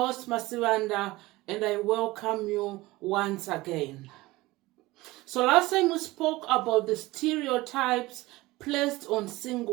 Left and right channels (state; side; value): quieter; left; 19.7 dB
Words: Masivanda, and I welcome you once again. So last time we spoke about the stereotypes placed on